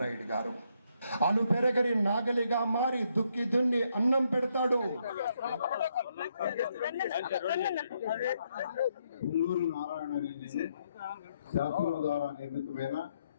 గారు అను పెరగని నాగలిగా మారి దుక్కి దున్ని అన్నం పెడతాడు. పుల్లూరు నారాయణ రెడ్డి శాసనం ద్వారా నిర్మితమైన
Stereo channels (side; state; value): both; inverted; correlation -0.76